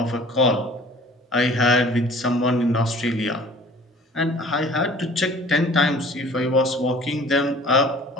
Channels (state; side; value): normal; both; correlation 0.49